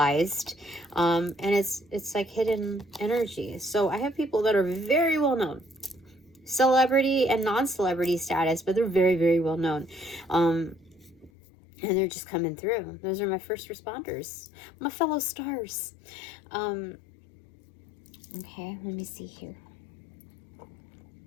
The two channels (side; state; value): right; drops out; at 11.3 s